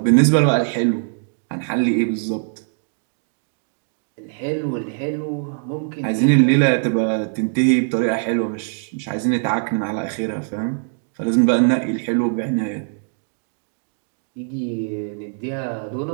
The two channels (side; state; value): left; silent; 62 dB below the other